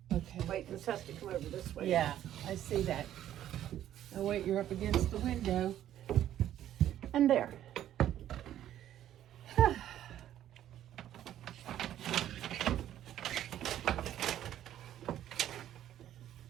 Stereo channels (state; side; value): quieter; left; 11.7 dB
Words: Okay. Wait, this has to come over this way. Yeah, I see that. Oh, wait, you're up against the window. And there.